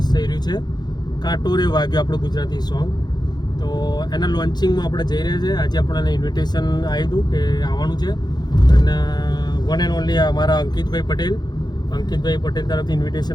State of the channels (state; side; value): late; right; 0.20 ms